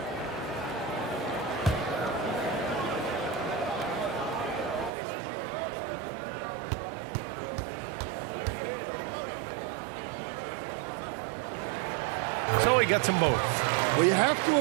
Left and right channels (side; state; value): left; drops out; at 4.9 s